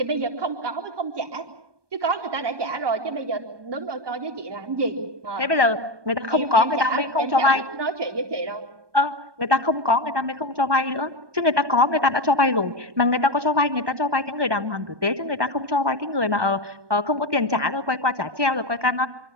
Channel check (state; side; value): late; left; 1.2 ms